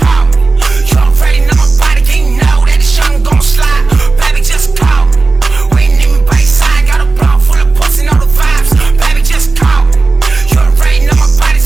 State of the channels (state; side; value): quieter; left; 3.7 dB